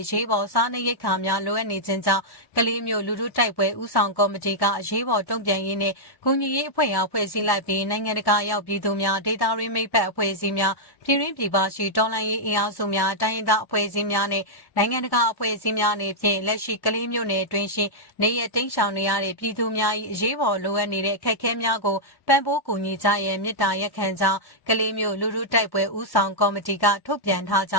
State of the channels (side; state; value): right; late; 1.1 ms